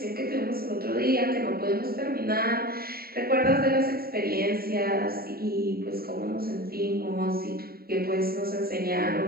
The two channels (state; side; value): late; left; 0.44 ms